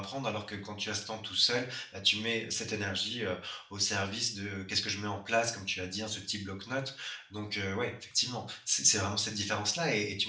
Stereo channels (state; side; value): identical; both; correlation 1.00